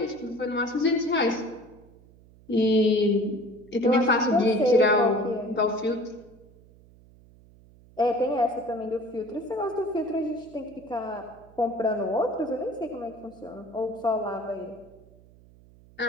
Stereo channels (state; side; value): noise; right; hum, 25 dB below the sound